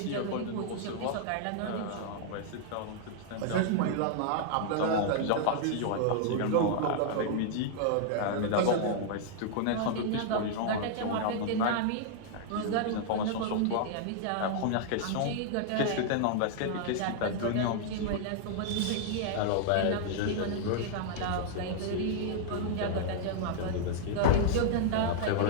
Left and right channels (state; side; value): different; both; correlation -0.01